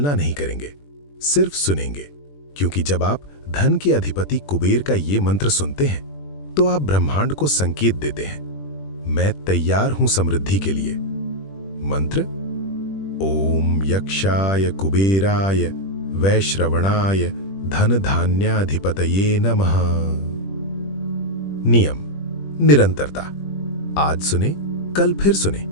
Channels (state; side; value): late; right; 21 ms